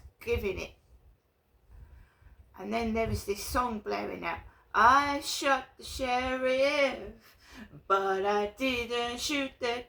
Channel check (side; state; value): both; identical; correlation 1.00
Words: giving it. And then there was this song blaring out. I shot the sheriff, but I didn't shoot the